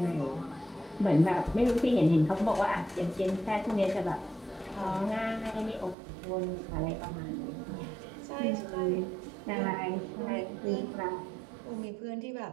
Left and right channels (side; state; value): left; drops out; at 6.0 s